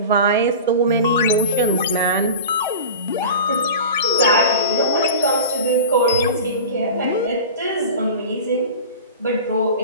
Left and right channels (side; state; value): both; inverted; correlation -0.33